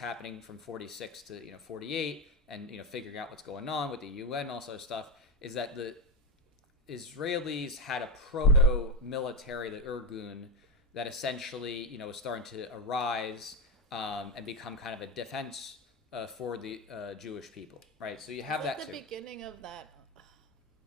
from 46 to 48, and figuring out what's going on with the UN and all sort of stuff, is that the Israelis had a proto-military, the Irgun, that essentially was starting to arise and become kind of a defense for the Jewish people, right? So you have that too. The beginning of that.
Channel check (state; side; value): normal; both; correlation 0.14